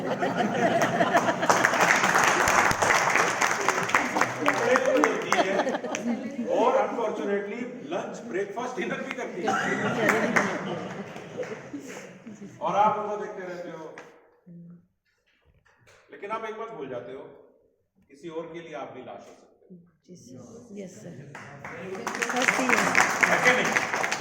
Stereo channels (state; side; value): identical; both; correlation 1.00